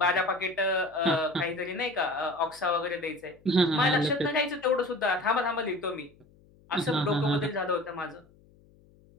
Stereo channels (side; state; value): left; noise; hum, 29 dB below the sound